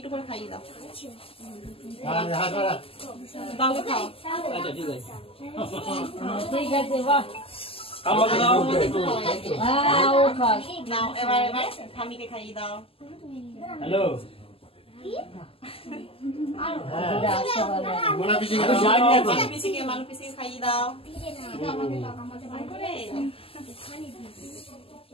করে খাইয়ে দাও। বাবু খাও। আচ্ছা ঠিক আছে। ঠিক আছে বাহ। আমাকে দাও। হ্যাঁ ও খাস। নাও এবার ঠামিকে খাইয়ে দাও। হ্যালো মোনা পিছিয়ে মানু পিসিকে খাইয়ে দাও।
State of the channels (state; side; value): late; right; 0.27 ms